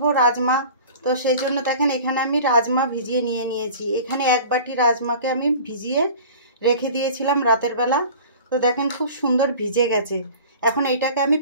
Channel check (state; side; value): inverted; both; correlation -0.42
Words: राजमा। तो सेई जोन्नो देखें एखाने आमी राजमा भिजिए निये नियेछि। एखाने एक बाटी राजमाके आमी भिजिए रेखे दिएछिलाम रातेर बेला। तो देखें खूब सुंदर भिजे गेछे। एखन एटाके आमी